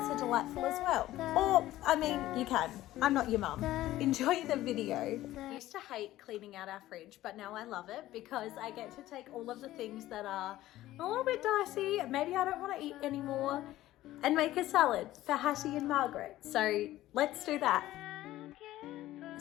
are delightful as well. Or, I mean, you can. I'm not your mum. Enjoy the video. I used to hate cleaning out our fridge, but now I love it because I get to take all of the things that are a little bit dicey, maybe I don't want to eat anymore, and make a salad for Hattie and Margaret. So let's do that.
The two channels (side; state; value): right; quieter; 15.2 dB